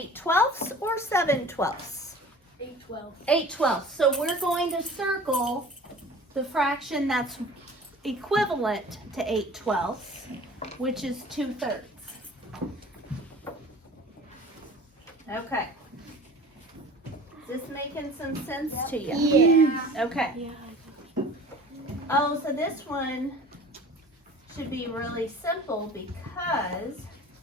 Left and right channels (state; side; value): normal; both; correlation 0.43